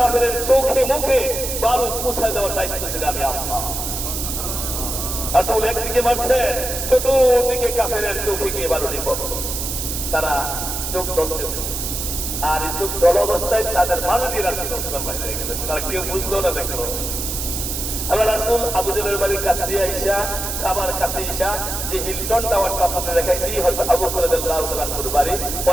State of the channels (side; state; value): right; noise; hiss, 4 dB below the sound